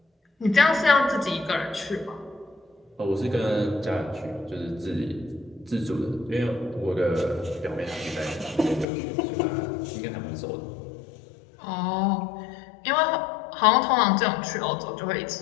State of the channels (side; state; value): right; drops out; at 8.8 s